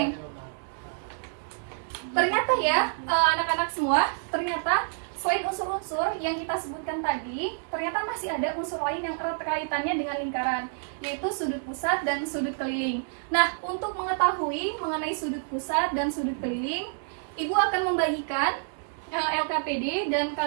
Ternyata ya, anak-anak semua, ternyata selain unsur-unsur yang kita sebutkan tadi, ternyata masih ada unsur lain yang erat kaitannya dengan lingkaran, yaitu sudut pusat dan sudut keliling. Nah, untuk mengetahui mengenai sudut pusat dan sudut keliling, Ibu akan membagikan LKPD dan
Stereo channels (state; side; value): silent; left; digital silence